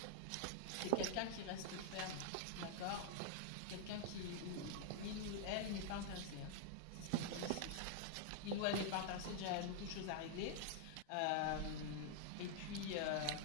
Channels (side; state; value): both; different; correlation -0.01